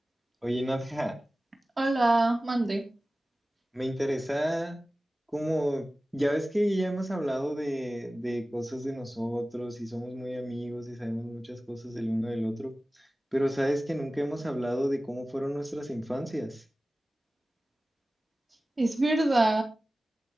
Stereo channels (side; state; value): both; normal; correlation 0.97